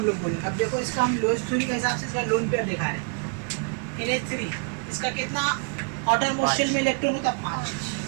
लोग बोलेंगे। अब देखो इसका हम लुईस थ्योरी के हिसाब से इसका लोन पेयर दिखा रहे हैं NH3, इसका कितना आउटर मोस्ट शेल में इलेक्ट्रॉन होता है? 5,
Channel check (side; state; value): left; quieter; 36.2 dB